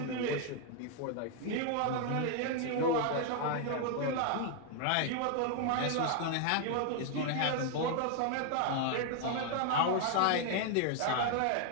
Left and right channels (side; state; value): both; different; correlation 0.00